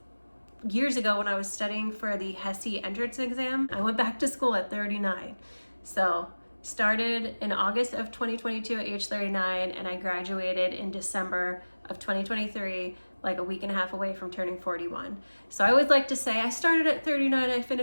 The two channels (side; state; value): both; inverted; correlation -1.00